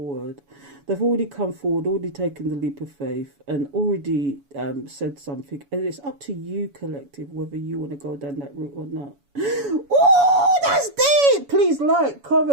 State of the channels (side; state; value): left; late; 7.1 ms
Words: They've already come forward, already taken the leap of faith, and already said something, and it's up to you, collective, whether you want to go down that route or not. Oh, that's deep. Please like,